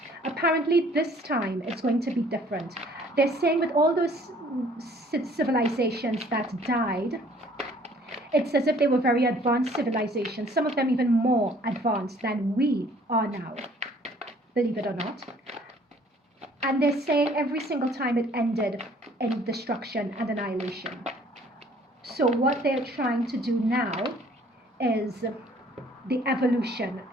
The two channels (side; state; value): both; normal; correlation 0.57